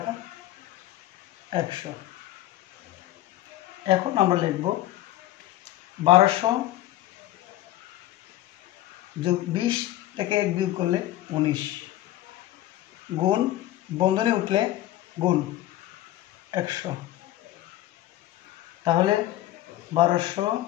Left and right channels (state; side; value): quieter; right; 14.5 dB